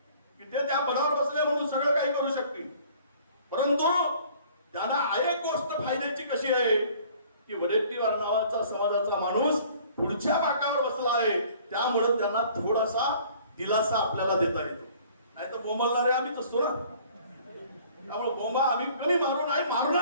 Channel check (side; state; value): both; inverted; correlation -0.54